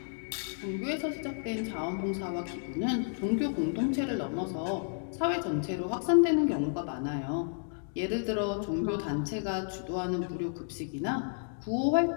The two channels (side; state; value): right; silent; digital silence